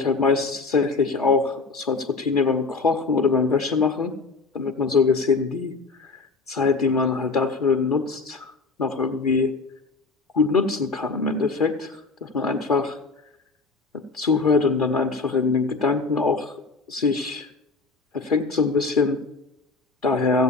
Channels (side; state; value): right; quieter; 4.1 dB